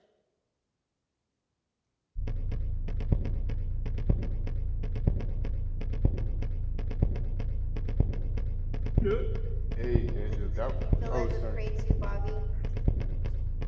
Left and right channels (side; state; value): both; identical; correlation 1.00